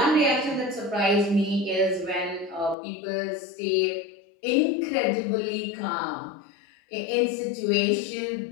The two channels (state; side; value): drops out; right; at 2.8 s